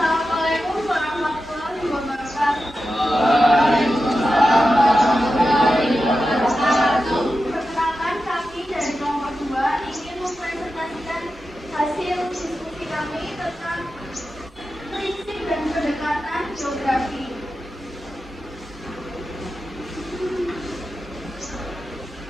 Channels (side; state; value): both; normal; correlation 0.91